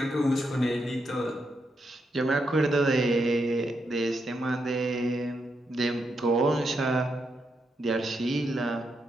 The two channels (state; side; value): normal; both; correlation 0.82